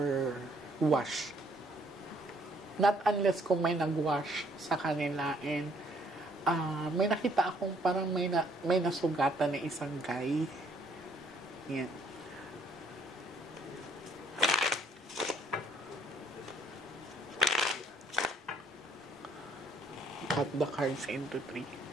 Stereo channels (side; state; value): both; normal; correlation 0.63